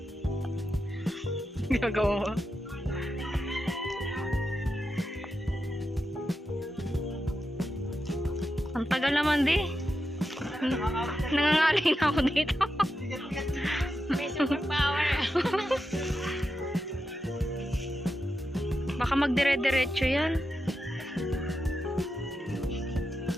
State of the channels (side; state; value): both; normal; correlation 0.88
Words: Gagawa mo. Ang tagal naman di. Nangangalay na ako dito. May superpower. Baka magdire-diretso yan.